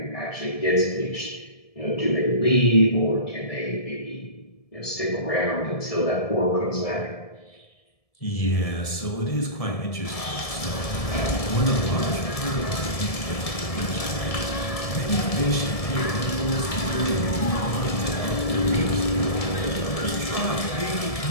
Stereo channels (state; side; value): late; right; 1.7 ms